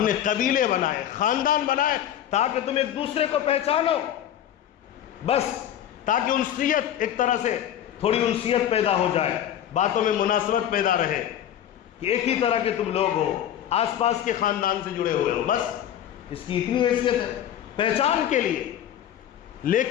نے قبیلے بنائے، خاندان بنائے تاکہ تم ایک دوسرے کو پہچانو، بس تاکہ انسیت، ایک طرح سے تھوڑی انسیت پیدا ہو جائے، باتوں میں مناسبت پیدا رہے کہ ایک ہی طرح کے تم لوگ ہو، آس پاس کے خاندان سے جڑے ہوئے ہو، بس اس کی اتنی حیثیت ہے پہچان کے لیے۔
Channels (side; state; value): right; quieter; 10.8 dB